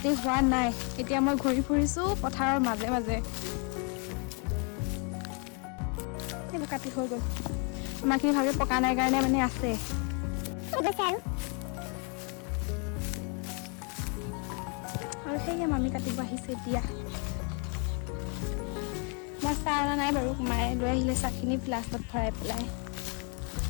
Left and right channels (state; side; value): quieter; right; 36.9 dB